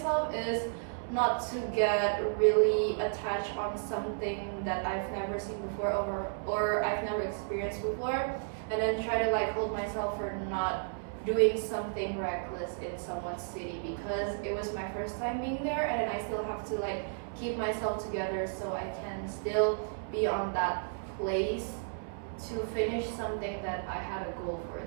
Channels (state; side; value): silent; left; 56 dB below the other